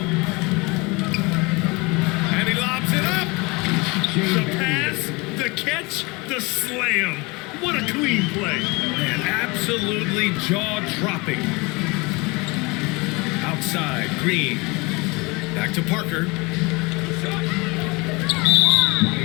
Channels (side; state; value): right; quieter; 26.1 dB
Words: And he lobs it up. The pass, the catch, the slam. What a clean play. And absolutely jaw-dropping. Outside, Green. Back to Parker.